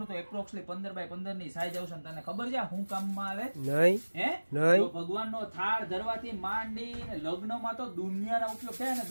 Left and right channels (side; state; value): both; inverted; correlation -1.00